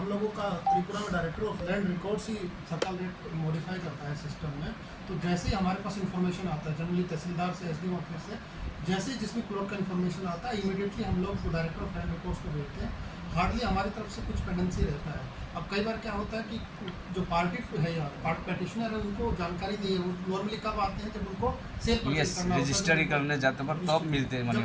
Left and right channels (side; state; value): both; identical; correlation 1.00